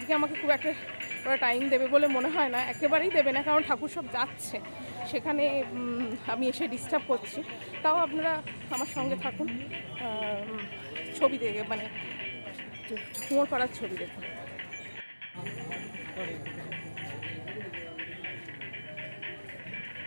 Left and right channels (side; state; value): both; inverted; correlation -1.00